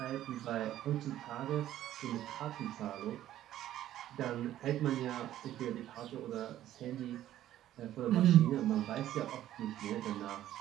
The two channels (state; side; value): quieter; left; 12.7 dB